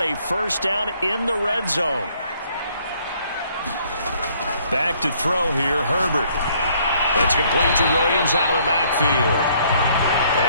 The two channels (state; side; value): inverted; both; correlation -0.64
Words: a first down in the red zone. Back to throw here, Herbert. That's complete to Williams out of the backfield.